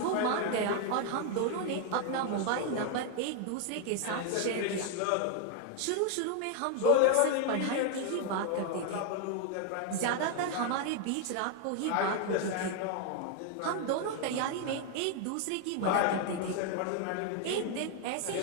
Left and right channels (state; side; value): different; both; correlation 0.01